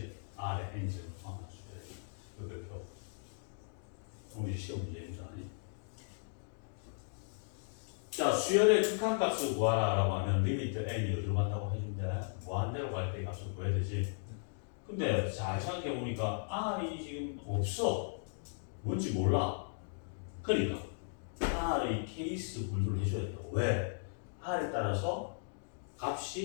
R의 n승은 포함한 수열의 그 표. 그럼 이제 시험 문제입니다. 자, 수열의 극한값을 구하라라고 하면 리미트 n이 어디로 간다고 해준대? 무한대로 갈 때 값을 구해야 되지. 근데 잘 생각해 보니까 R이 지금 없어. 뭔지 몰라. 그러니까 R의 케이스 분류를 해줘야 된다고. 왜? R에 따라서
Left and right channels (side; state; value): right; silent; digital silence